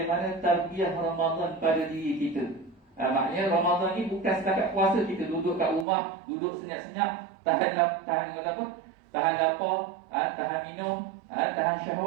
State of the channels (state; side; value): drops out; left; at 5.9 s